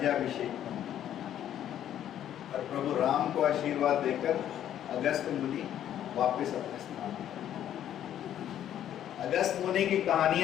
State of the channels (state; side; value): quieter; right; 10.9 dB